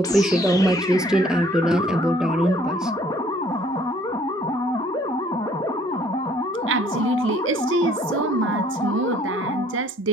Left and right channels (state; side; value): normal; both; correlation 0.59